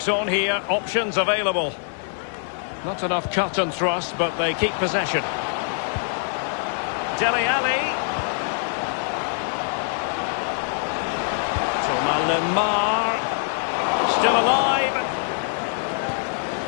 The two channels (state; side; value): silent; right; digital silence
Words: on here. Options available. Not enough cut and thrust, but they keep possession. Dele Alli. Thomas Lemar. Still alive.